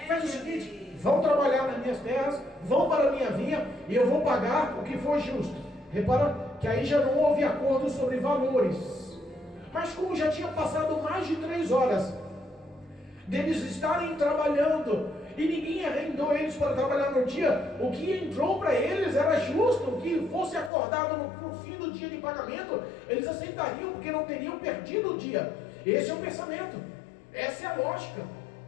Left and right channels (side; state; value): right; drops out; at 20.7 s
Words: Faz o seguinte: vão trabalhar nas minhas terras, vão para a minha vinha e eu vou pagar o que for justo. Repara que aí já não houve acordo sobre valores. Mas como já tinha passado mais de 3 horas deles estarem trabalhando e ninguém arrendou eles para trabalhar no dia. O que entrou para eles era justo, que fosse acordado no fim do dia de pagamento, eles aceitariam, porque não teriam perdido o dia. Esse é o pensamento, essa é a lógica.